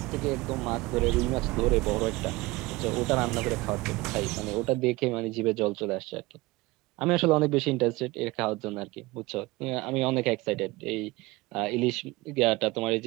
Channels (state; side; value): quieter; left; 21.4 dB